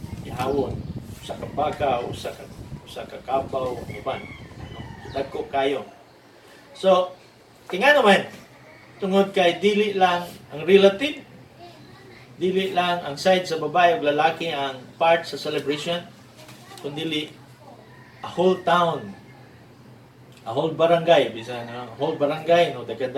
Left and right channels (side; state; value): both; identical; correlation 1.00